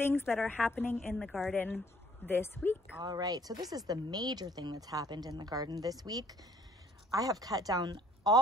that are happening in the garden this week. All right, so this is the major thing that's happened in the garden this week. I have cut down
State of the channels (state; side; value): normal; both; correlation 0.60